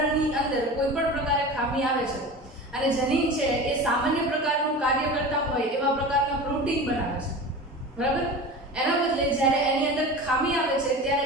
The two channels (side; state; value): both; normal; correlation 0.32